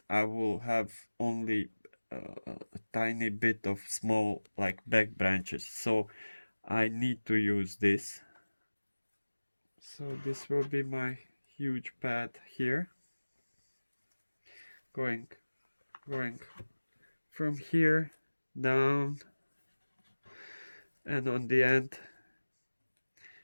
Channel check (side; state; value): both; inverted; correlation -1.00